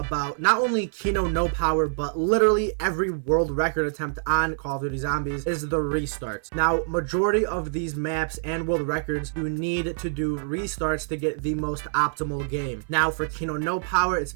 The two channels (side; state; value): left; silent; 61 dB below the other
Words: not only Kino No Power, but literally every world record attempt on Call of Duty Zombies is the restarts. Now, majority of these maps and world records, you need to do restarts to get the most optimal game. Now, for Kino No Power, it's